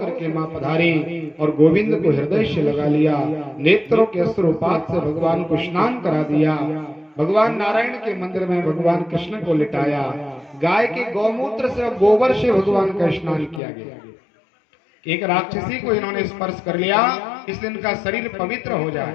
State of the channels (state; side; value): drops out; right; at 13.6 s